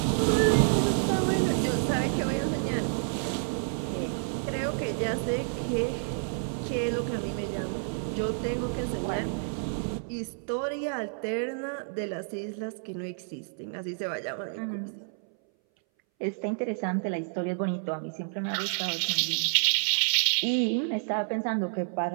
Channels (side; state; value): left; silent; 58 dB below the other